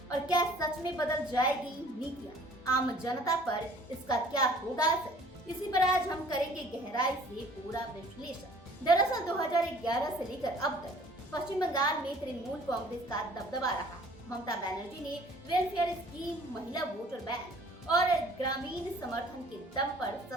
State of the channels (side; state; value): both; normal; correlation 0.52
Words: और क्या सच में बदल जाएगी नीतियां, आम जनता पर इसका क्या होगा असर? इसी पर आज हम करेंगे गहराई से पूरा विश्लेषण। दरअसल 2011 से लेकर अब तक पश्चिम बंगाल में तृणमूल कांग्रेस का दबदबा रहा है। ममता बनर्जी ने वेलफेयर स्कीम, महिला वोटर बैंक और ग्रामीण समर्थन के दम पर